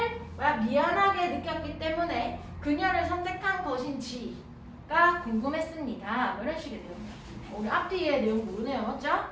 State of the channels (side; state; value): both; identical; correlation 1.00